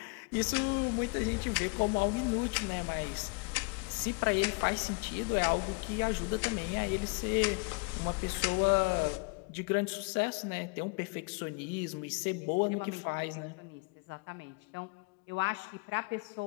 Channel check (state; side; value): quieter; right; 31.8 dB